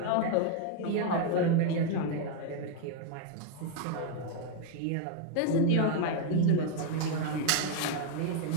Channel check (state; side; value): different; both; correlation 0.01